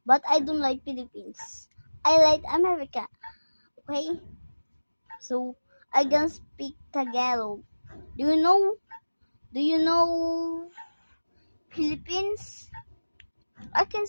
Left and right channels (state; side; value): inverted; both; correlation -1.00